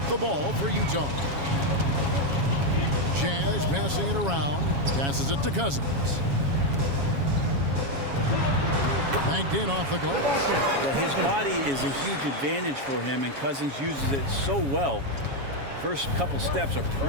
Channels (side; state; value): left; late; 7.2 ms